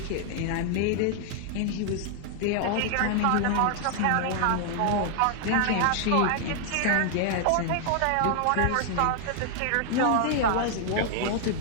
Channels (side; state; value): both; different; correlation 0.00